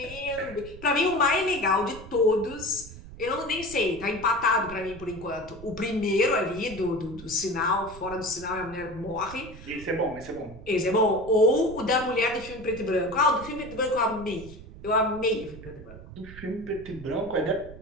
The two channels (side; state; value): right; noise; rumble, 16 dB below the sound